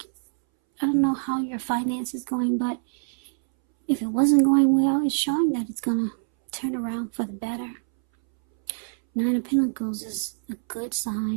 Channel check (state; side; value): silent; left; 62 dB below the other